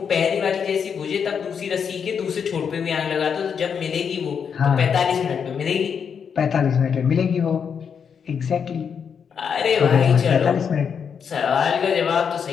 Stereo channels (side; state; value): right; quieter; 6.9 dB